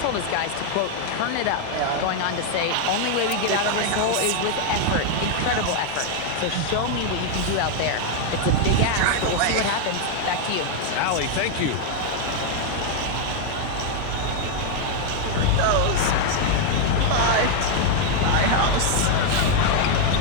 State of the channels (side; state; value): both; different; correlation 0.00